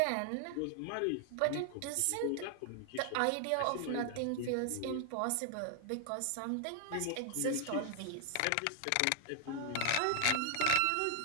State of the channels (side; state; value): both; different; correlation 0.00